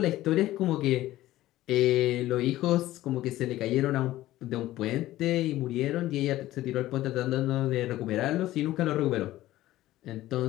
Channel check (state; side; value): quieter; right; 15.5 dB